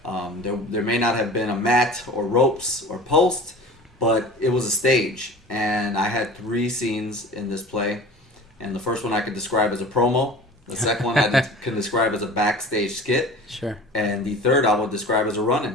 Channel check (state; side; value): normal; both; correlation 0.40